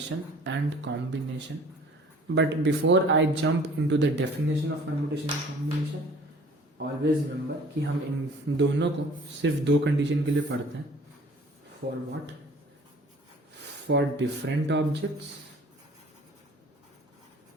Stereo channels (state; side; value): normal; both; correlation 0.50